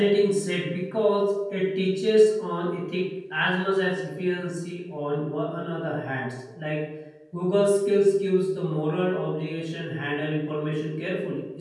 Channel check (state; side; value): identical; both; correlation 1.00